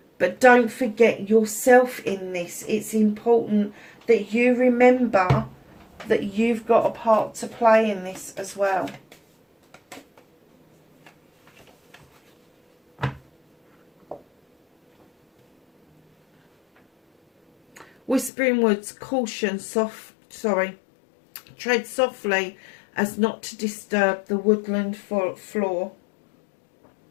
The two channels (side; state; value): right; drops out; at 18.3 s